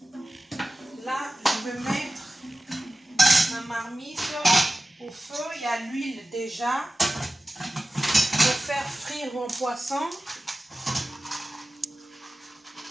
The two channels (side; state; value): both; normal; correlation 0.96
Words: Là, je vais mettre ma marmite au feu. Il y a l'huile déjà. Je vais faire frire mon poisson.